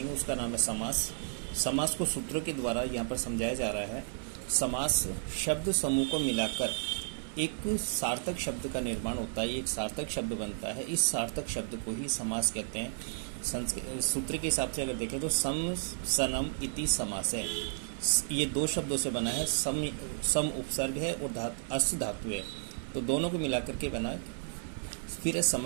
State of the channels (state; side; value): silent; left; digital silence